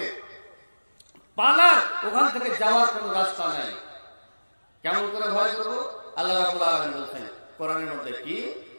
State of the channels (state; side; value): inverted; both; correlation -1.00